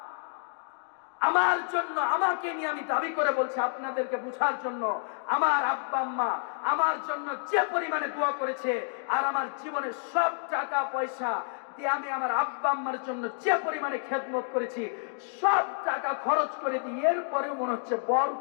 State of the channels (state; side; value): silent; right; 58 dB below the other